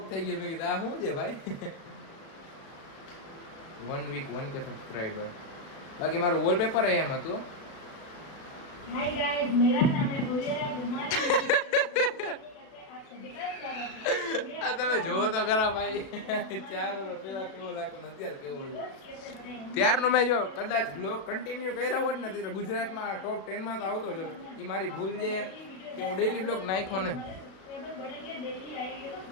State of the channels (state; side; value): late; right; 36 ms